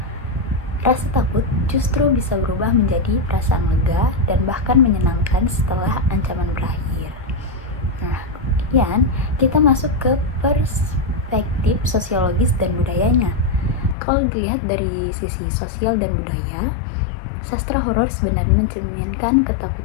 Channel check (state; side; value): drops out; right; at 14.0 s